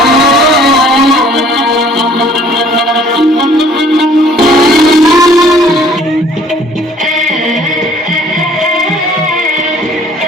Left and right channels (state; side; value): normal; both; correlation 0.56